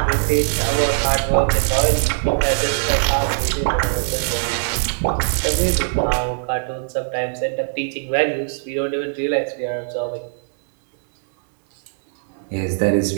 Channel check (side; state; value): left; silent; 65 dB below the other